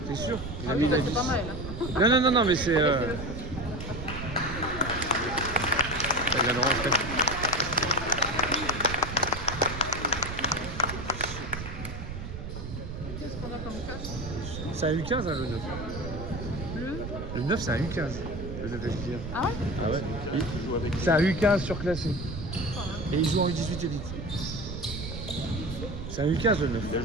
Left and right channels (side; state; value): right; noise; rumble, 8 dB below the sound